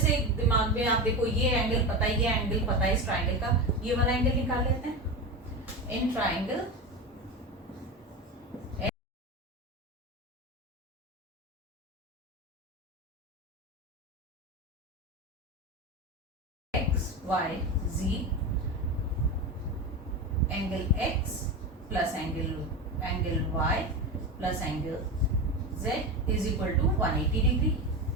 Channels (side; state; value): both; normal; correlation 0.21